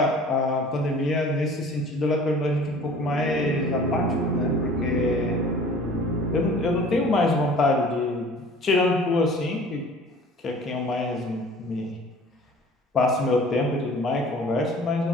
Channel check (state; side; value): normal; both; correlation 0.47